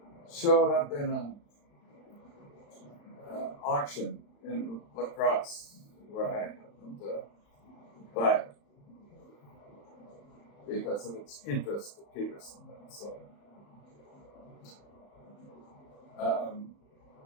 showed up in an auction in La Crosse, where I happened to buy it because of its interest to Peterson. So,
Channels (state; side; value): late; right; 35 ms